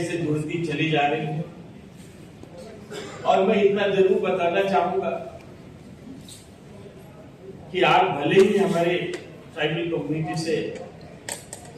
जुड़ती चली जा रही हैं। और मैं इतना जरूर बताना चाहूंगा कि आप भले ही हमारे ट्राइबल कम्युनिटी से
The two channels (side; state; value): both; identical; correlation 1.00